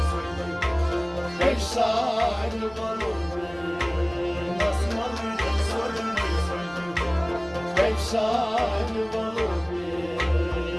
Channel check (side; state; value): right; noise; rumble, 23 dB below the sound